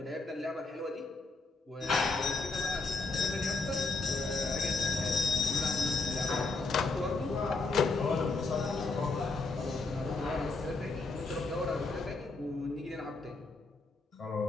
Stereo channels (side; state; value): right; quieter; 3.7 dB